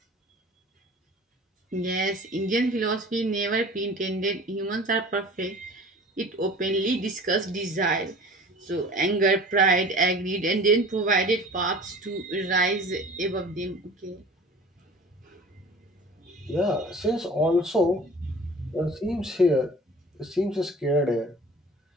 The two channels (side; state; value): both; normal; correlation 0.43